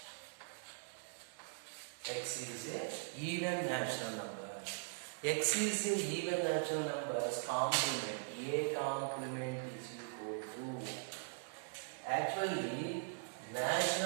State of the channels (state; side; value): silent; left; digital silence